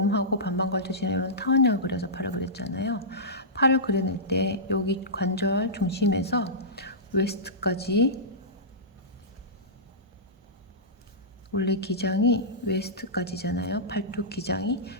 반반 걸쳐지는 이런 타원형을 그려서 팔을 그렸잖아요. 팔을 그려낼 때 여기 관절 중심에서 웨스트까지, 원래 기장이 웨스트까지잖아요. 팔뚝 기장이.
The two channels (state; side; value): normal; both; correlation -0.17